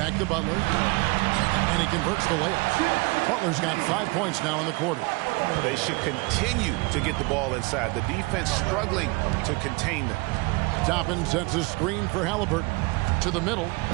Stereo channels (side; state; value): left; quieter; 26.4 dB